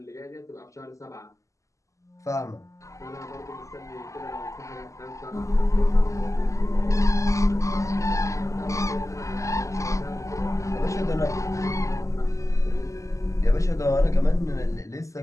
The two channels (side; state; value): right; late; 0.16 ms